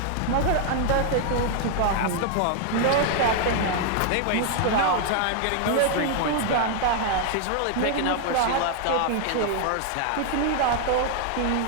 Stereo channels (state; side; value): different; both; correlation 0.00